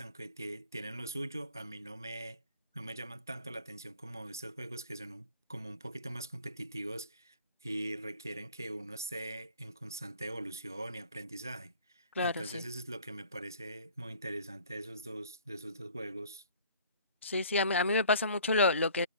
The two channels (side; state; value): both; inverted; correlation -0.52